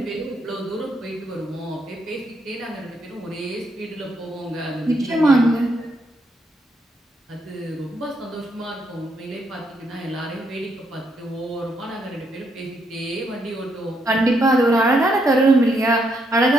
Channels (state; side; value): normal; both; correlation 0.76